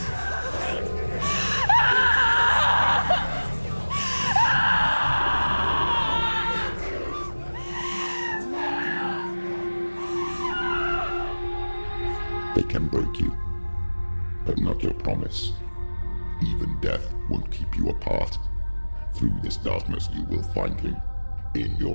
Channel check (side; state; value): both; inverted; correlation -1.00